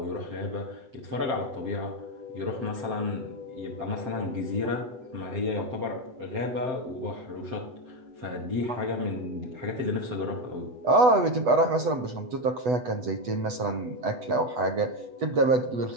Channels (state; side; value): late; left; 8.1 ms